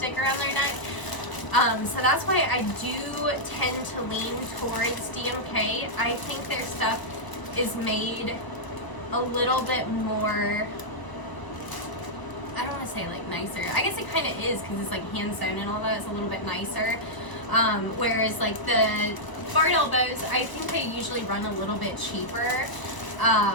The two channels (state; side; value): late; right; 1.0 ms